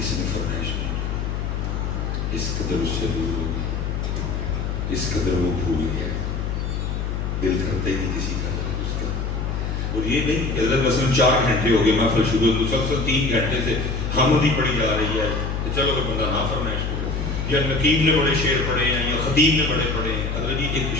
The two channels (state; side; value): noise; left; hum, 2 dB below the sound